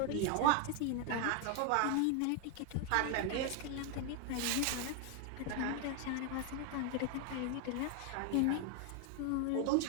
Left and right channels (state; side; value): different; both; correlation 0.00